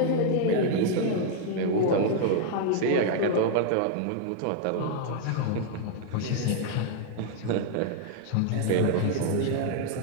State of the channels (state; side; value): different; both; correlation 0.00